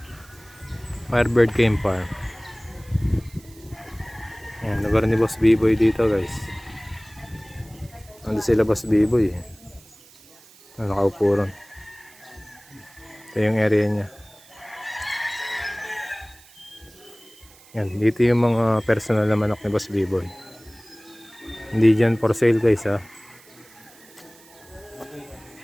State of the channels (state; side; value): noise; right; hiss, 25 dB below the sound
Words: Firebird Game Farm. Ayan, lugar ni Boss B-Boy dito guys. Ando sila Boss B-Boy eh. Nakaupo ron. Ito yung area niya. Yan, dito yung mga personal na manok ni Boss B-Boy. Hindi dyan for sale guys ha.